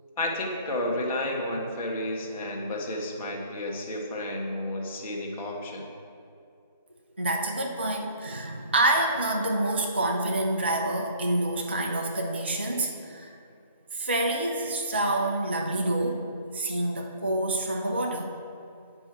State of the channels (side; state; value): both; inverted; correlation -0.52